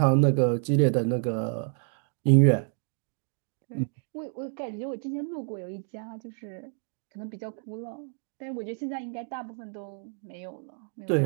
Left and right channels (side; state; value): left; silent; 59 dB below the other